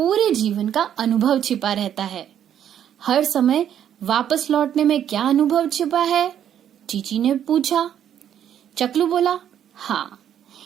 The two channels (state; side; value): quieter; left; 9.8 dB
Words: जीवन का अनुभव छिपा रहता है. हर समय वापस लौटने में क्या अनुभव छिपा है? चीची ने पूछा. चकलू बोला, हाँ,